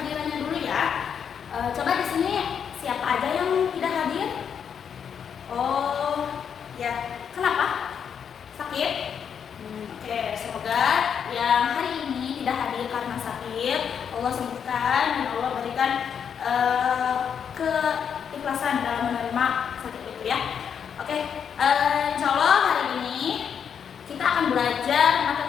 dulu ya. Coba di sini siapa aja yang tidak hadir? Oh, ya. Kenapa? Sakit? Oke, semoga yang hari ini tidak hadir karena sakit Allah sembuhkan dan Allah berikan keikhlasan dalam menerima sakit itu ya. Oke, insya Allah hari ini kita akan belajar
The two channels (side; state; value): right; quieter; 7.6 dB